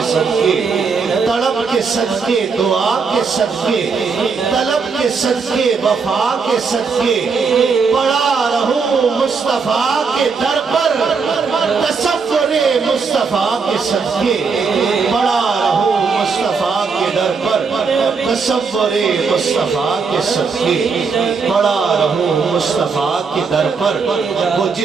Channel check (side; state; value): left; quieter; 5.1 dB